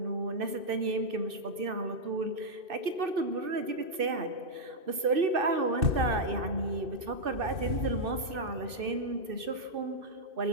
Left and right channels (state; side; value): late; left; 2.6 ms